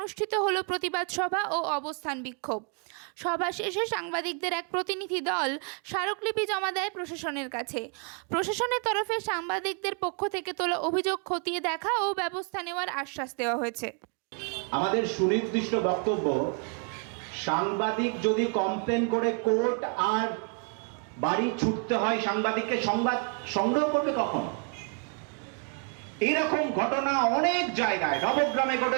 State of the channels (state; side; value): quieter; left; 38.9 dB